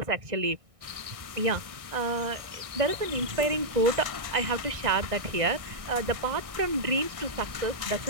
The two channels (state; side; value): late; left; 1.6 ms